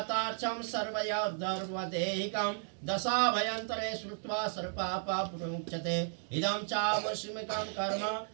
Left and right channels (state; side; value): silent; left; digital silence